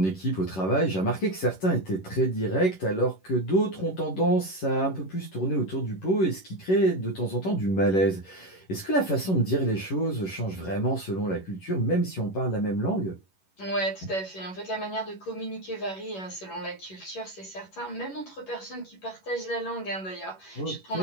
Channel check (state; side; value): late; right; 11 ms